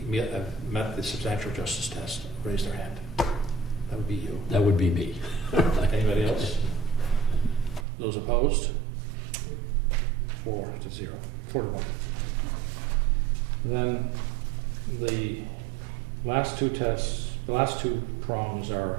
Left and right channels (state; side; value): drops out; left; at 7.9 s